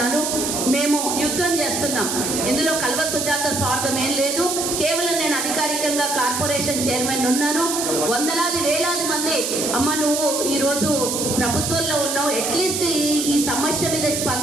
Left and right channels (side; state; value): right; noise; hiss, 2 dB below the sound